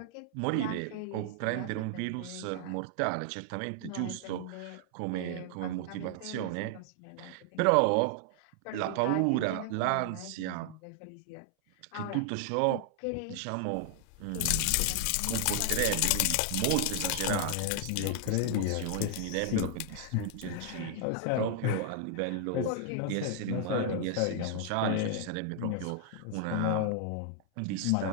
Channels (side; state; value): both; different; correlation 0.00